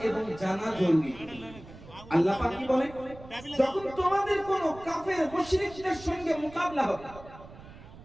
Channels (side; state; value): right; noise; rumble, 18 dB below the sound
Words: এবং জানা জরুরি। আল্লাহ পাক কি বলেন, যখন তোমাদের কোন কাফের মুশরিকদের সঙ্গে মোকাবিলা হবে,